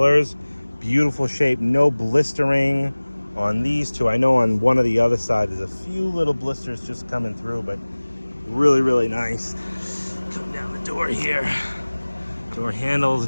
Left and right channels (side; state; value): both; inverted; correlation -1.00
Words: beautiful shape, no blistering on these two. I know on one of the other side there's a few little blisters just coming through, but really, really nice. Come down the door here. Door handle's